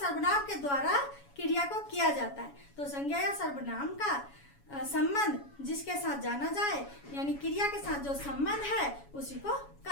के द्वारा क्रिया को किया जाता है। तो संज्ञा या सर्वनाम का संबंध जिसके साथ जाना जाए, यानी क्रिया के साथ जो संबंध है, उसी को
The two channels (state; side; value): late; right; 7.1 ms